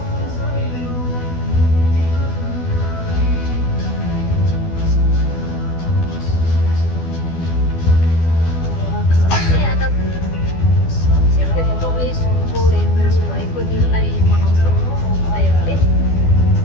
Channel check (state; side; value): late; right; 12 ms